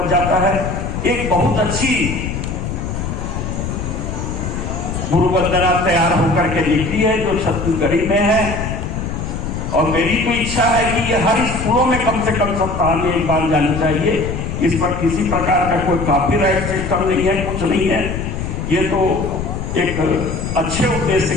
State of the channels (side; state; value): left; noise; rumble, 4 dB below the sound